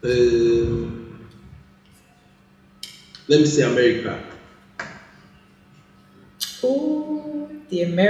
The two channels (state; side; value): identical; both; correlation 1.00